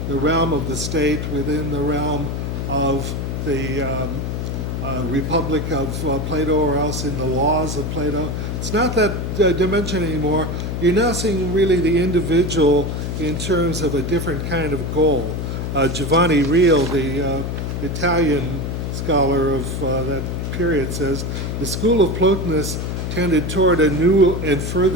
the realm of the state, within the realm of the Republic of Plato, or else in the laws of Plato, it's not that dimension anymore. You're now seeing really the individual in terms of a different kind of goal. Giovanni Reale, the Italian scholar of that period, says the school of Plotinus tended toward a new and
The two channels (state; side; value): noise; left; hum, 3 dB below the sound